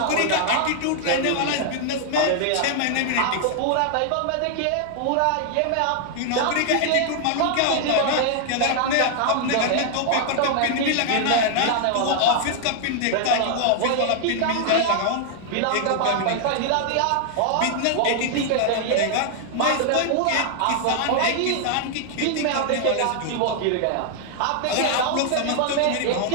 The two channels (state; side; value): different; both; correlation 0.00